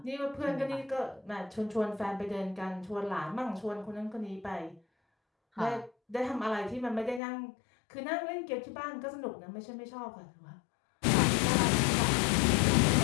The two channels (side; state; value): right; drops out; at 7.2 s